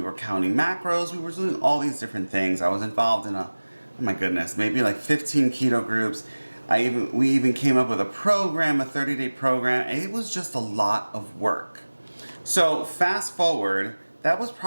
counting macros, we were doing all these different things. I was involved in oh my goodness, maybe like 15 keto groups. We even came up with a program, a 30-day program, and it was just a lot of work. So fast forward, that was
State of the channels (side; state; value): both; inverted; correlation -1.00